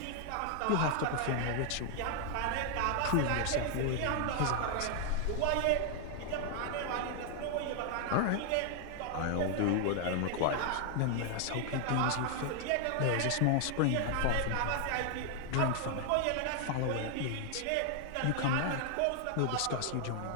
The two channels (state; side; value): different; both; correlation 0.00